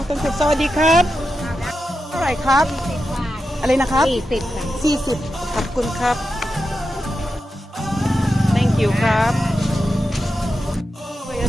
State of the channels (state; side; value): normal; both; correlation 0.89